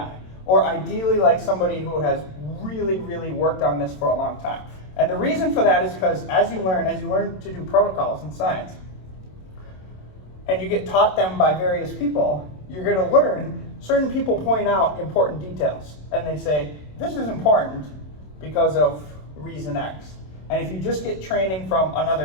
or ideally like somebody who has really, really worked on this for a long time. And the reason for that is because as you learn to do protocols in science, and you get taught them by various people, you're going to learn certain people point out important details. And they say, this is important because of reason X. And if you just get training from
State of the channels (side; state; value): right; late; 27 ms